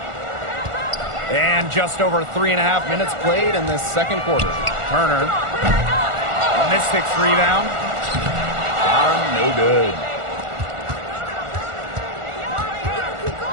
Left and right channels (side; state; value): left; late; 1.4 ms